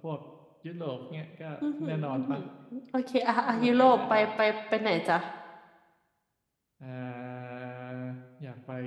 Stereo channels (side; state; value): both; identical; correlation 1.00